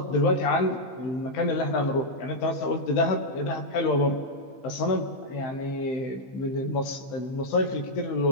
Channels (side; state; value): right; late; 15 ms